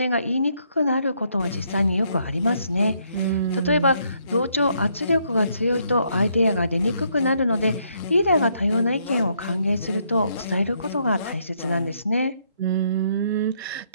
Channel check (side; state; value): both; inverted; correlation -0.72